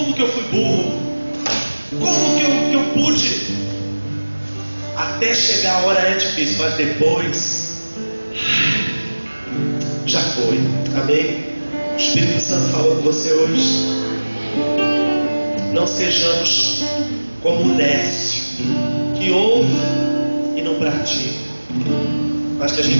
que eu fui burro? Como que eu pude? Até chegar a hora é difícil, mas depois já foi. Amém? O Espírito Santo falou com você hoje. Não sejamos como o nécio, que ouve e não pratica, mas que a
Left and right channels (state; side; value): inverted; both; correlation -1.00